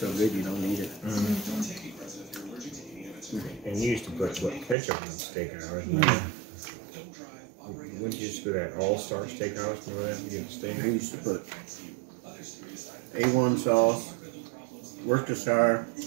good you don't need it. And you used to put ketchup on steakhouse. Wouldn't you just go to that All-Star Steakhouse? Remember that? You get the steak. I used to put A1 sauce, Worcestershire,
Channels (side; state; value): left; drops out; at 4.8 s